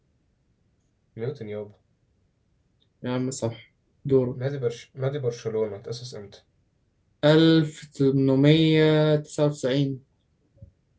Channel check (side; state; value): both; identical; correlation 1.00